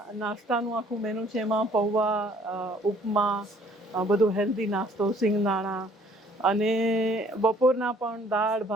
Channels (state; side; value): normal; both; correlation 0.59